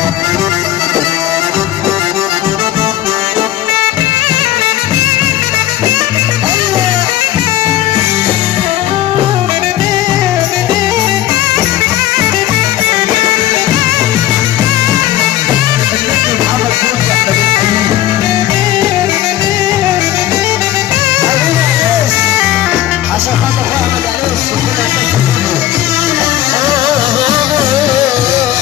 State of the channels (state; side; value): quieter; right; 13.6 dB